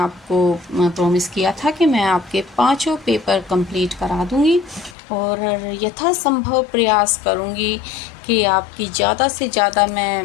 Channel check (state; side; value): drops out; right; at 5.0 s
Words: प्रॉमिस किया था कि मैं आपके 5 पेपर कंप्लीट करा दूंगी और यथासंभव प्रयास करूंगी कि आपकी ज़्यादा से ज़्यादा